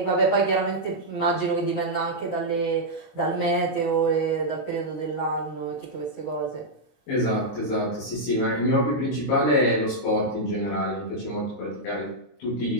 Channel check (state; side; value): late; right; 22 ms